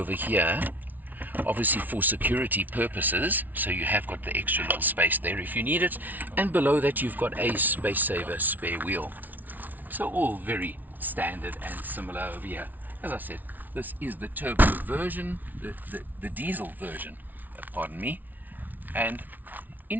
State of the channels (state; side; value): late; left; 0.082 ms